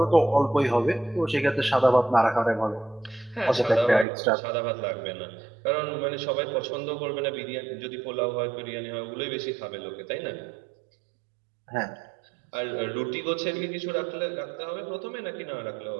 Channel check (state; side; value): drops out; left; at 4.0 s